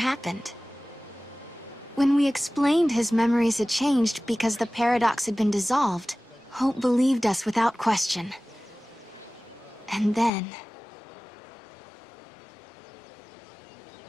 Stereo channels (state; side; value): drops out; right; at 10.3 s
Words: When we explained his memories had changed because the paradox had been dissolved, Hope believed us without question. And then...